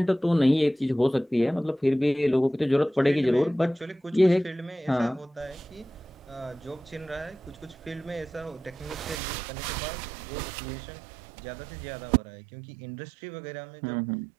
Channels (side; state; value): left; drops out; at 9.2 s